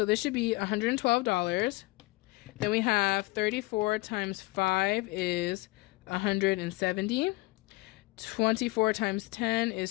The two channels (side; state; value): right; quieter; 22.2 dB